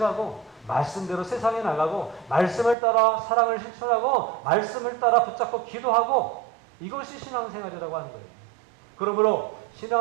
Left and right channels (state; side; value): drops out; left; at 2.8 s